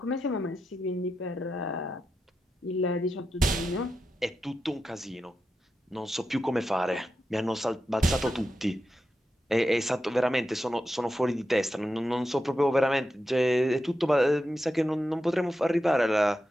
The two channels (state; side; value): normal; both; correlation 0.89